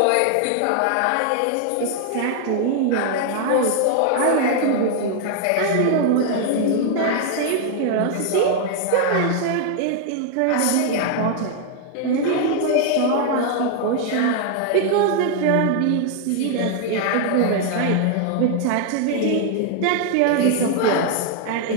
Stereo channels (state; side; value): different; both; correlation 0.00